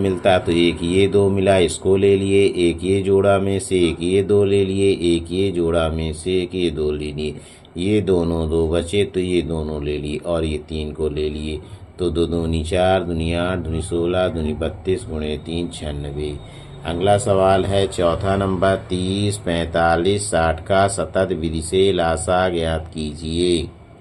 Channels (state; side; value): identical; both; correlation 1.00